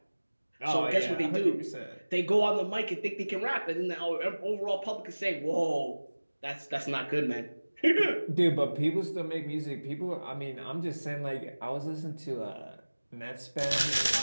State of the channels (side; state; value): both; inverted; correlation -1.00